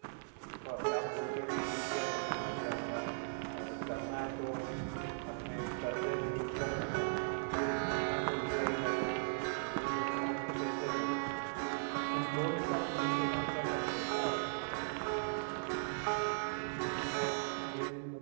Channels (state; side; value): silent; left; 52 dB below the other